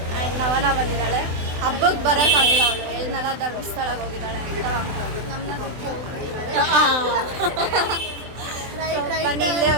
ಆ್ಯಂಡ್ ನವನ ಬಂದಿದ್ದಾಳೆ. ಹಬ್ಬಕ್ಕೆ ಬರೋಕ್ಕಾಗಿಲ್ಲ ಅವಳು, ಎಲ್ನೆಲ್ಲ ಧರ್ಮಸ್ಥಳಕ್ಕೆ ಹೋಗಿದ್ದಾಳೆ ಅಂತ. ಬನ್ನಿ, ಇಲ್ಲೇ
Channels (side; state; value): left; late; 24 ms